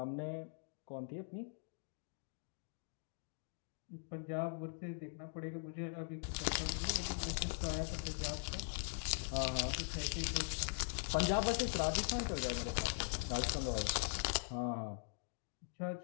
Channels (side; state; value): right; silent; digital silence